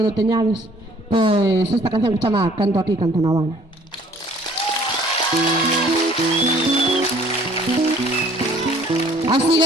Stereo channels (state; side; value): normal; both; correlation 0.56